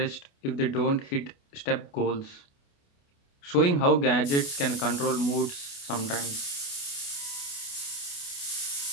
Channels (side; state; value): right; late; 28 ms